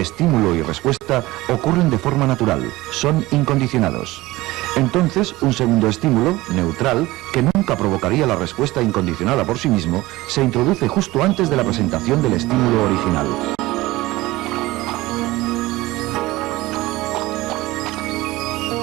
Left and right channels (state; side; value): quieter; left; 19.0 dB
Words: y respuesta, ocurren de forma natural, son incondicionados. Entonces, un segundo estímulo, neutral, que nunca provocaría la respuesta incondicionada por sí mismo, se introduce justo antes de la presentación del estímulo original.